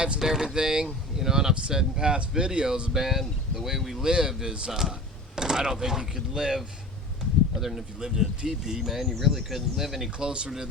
and everything, you know, and I've said in past videos, man, the way we live is, I don't think you could live, other than if you lived in a teepee, man, you really couldn't live any closer to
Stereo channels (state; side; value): normal; both; correlation 0.37